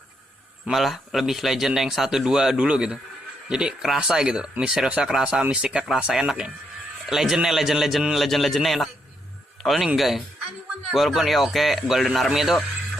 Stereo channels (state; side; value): normal; both; correlation 0.78